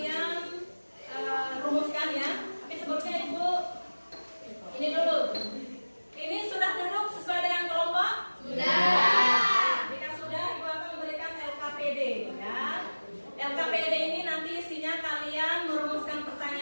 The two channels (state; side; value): inverted; both; correlation -1.00